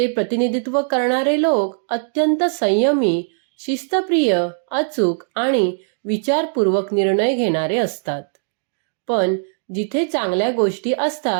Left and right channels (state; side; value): silent; left; 66 dB below the other